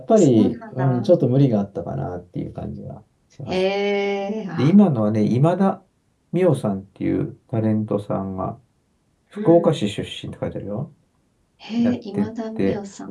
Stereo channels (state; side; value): identical; both; correlation 1.00